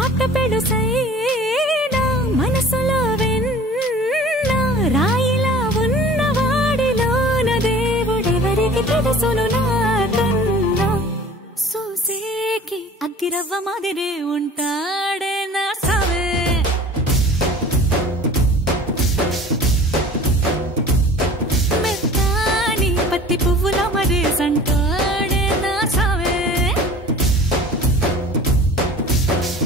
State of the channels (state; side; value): normal; both; correlation 0.44